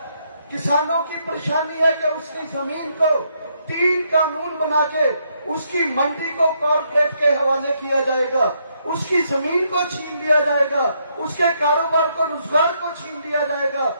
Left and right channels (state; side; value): inverted; both; correlation -0.75